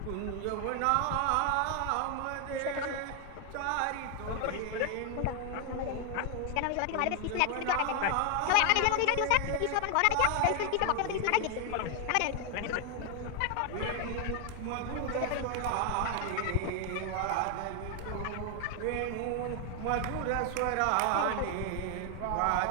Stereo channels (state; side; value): different; both; correlation 0.00